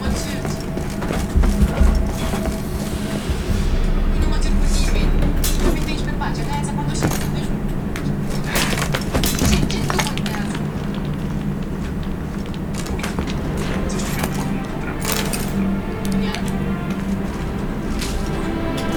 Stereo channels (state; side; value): identical; both; correlation 1.00